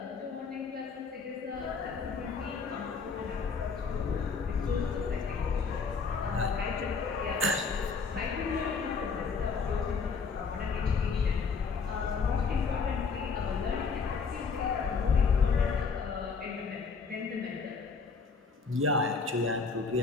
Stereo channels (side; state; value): right; quieter; 5.1 dB